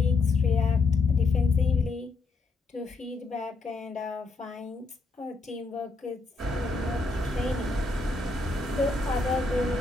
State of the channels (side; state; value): right; quieter; 3.8 dB